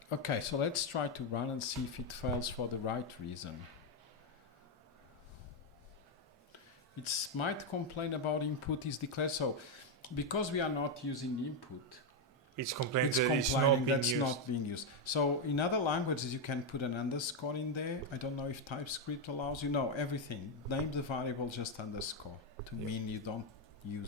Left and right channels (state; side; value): normal; both; correlation 0.03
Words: Okay, so let's try to run and see if it fails for the right reason. It might complain about input is declared. So because we are not using input, it's complaining that's not being used. So in other languages, you can put an underscore in there. I don't know if TypeScript allows you. No, everything. Name the variable just underscore to mean you don't